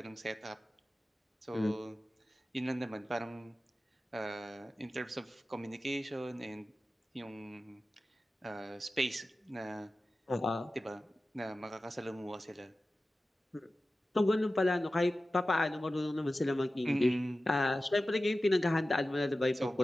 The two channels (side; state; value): both; normal; correlation 0.95